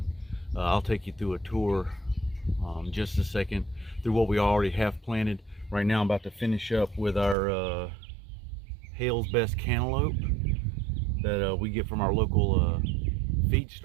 I'll take you through a tour just a second through what we already have planted. Right now I'm about to finish up with our Hale's Best cantaloupe that we get from our local feed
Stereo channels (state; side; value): drops out; left; at 7.4 s